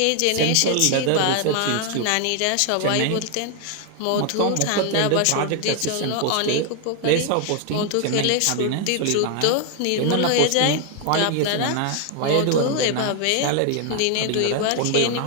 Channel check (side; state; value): both; different; correlation 0.00